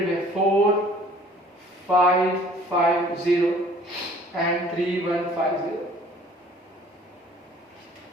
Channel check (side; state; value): both; normal; correlation 0.53